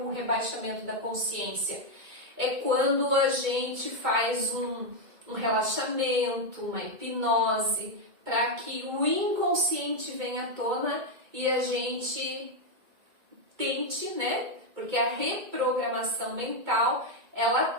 rebaixamento da consciência? É quando a gente faz um relaxamento, uma hipnose, para que o inconsciente venha à tona e a gente tente, né? Porque a reprogramação mental, ela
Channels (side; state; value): left; late; 2.2 ms